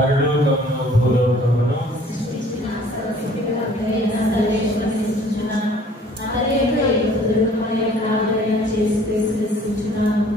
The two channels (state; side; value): normal; both; correlation 0.54